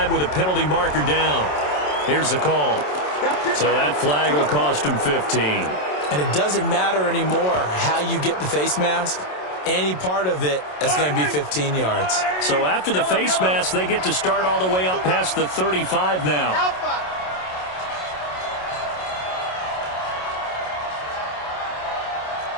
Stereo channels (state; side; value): late; right; 27 ms